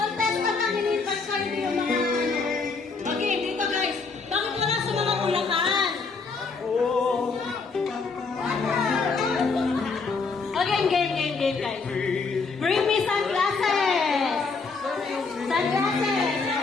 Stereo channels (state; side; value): quieter; right; 4.5 dB